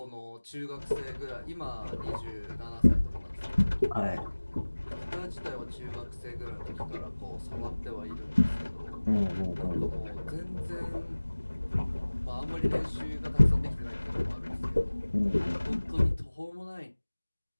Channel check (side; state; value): both; inverted; correlation -1.00